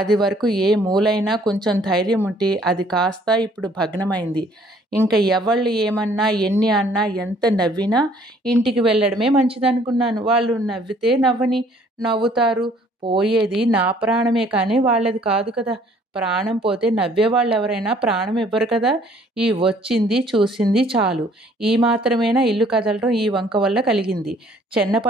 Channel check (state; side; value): normal; both; correlation 0.59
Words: వరకు ఏ మూలైనా కొంచెం ధైర్యం ఉంటే అది కాస్త ఇప్పుడు భగ్నమైంది. ఇంకా ఎవళ్ళు ఏమన్నా, ఎన్ని అన్నా, ఎంత నవ్వినా ఇంటికి వెళ్ళడమే మంచిదనుకున్నాను. వాళ్ళు నవ్వితే నవ్వని, నవ్వుతారు. పోయేది నా ప్రాణమే కానీ వాళ్ళది కాదు కదా! ప్రాణం పోతే నవ్వేవాళ్ళు ఎవరైనా ప్రాణం ఇవ్వరు కదా! ఈ వచ్చింది చూసింది చాలు. ఈ మాత్రమేనా ఇల్లు కదలడం ఈ వంక వల్ల కలిగింది.